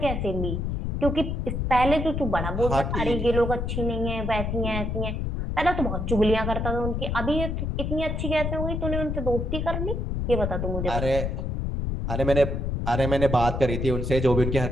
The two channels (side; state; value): left; noise; rumble, 2 dB below the sound